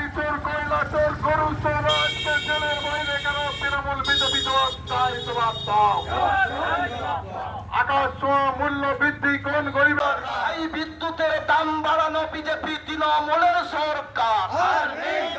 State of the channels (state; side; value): identical; both; correlation 1.00